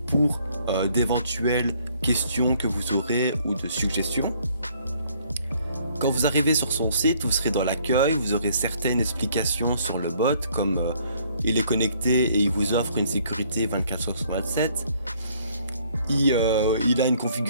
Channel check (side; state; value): both; inverted; correlation -0.63